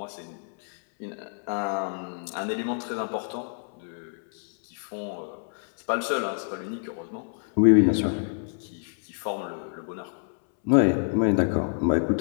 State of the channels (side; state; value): right; silent; 60 dB below the other